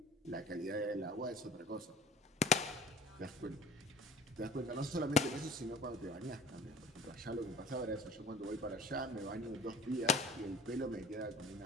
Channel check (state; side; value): normal; both; correlation 0.45